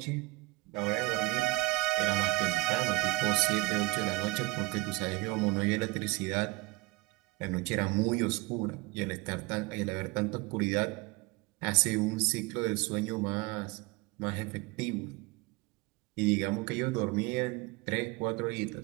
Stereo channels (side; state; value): left; quieter; 23.2 dB